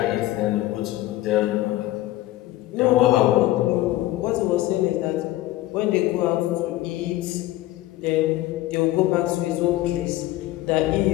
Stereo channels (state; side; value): quieter; right; 16.2 dB